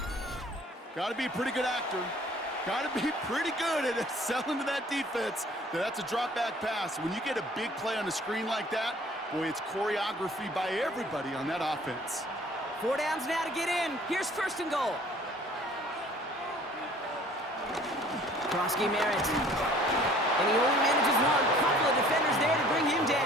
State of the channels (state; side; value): normal; both; correlation 0.53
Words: Got to be a pretty good actor. Got to be pretty good at selling to that defense. That's a drop back pass. When you get a big play on the screen like that, boy, it's choreography by everybody on that offense. 4 downs now to get in. Here's first and goal. Krosky Merritt. And he only manages one. Couple of defenders there to bring him